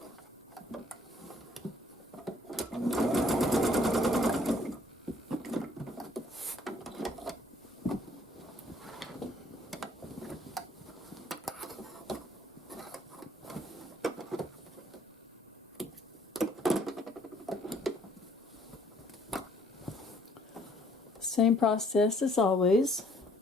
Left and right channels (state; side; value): normal; both; correlation 0.62